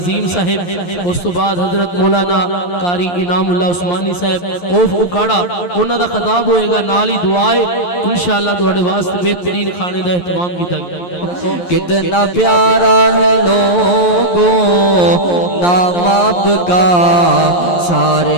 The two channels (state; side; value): late; right; 11 ms